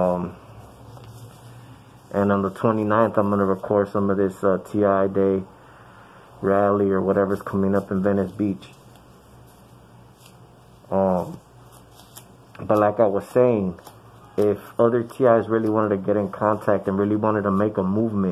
on the 29th, I'm going to record some of this TI Day rally or whatever's coming up in Venice Beach. But like I was saying, if other TIs really wanted to get in contact and really wanted to make a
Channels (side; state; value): both; identical; correlation 1.00